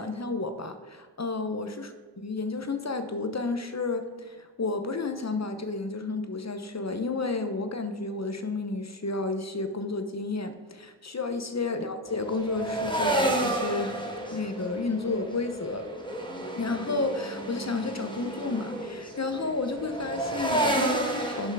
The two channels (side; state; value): both; normal; correlation 0.13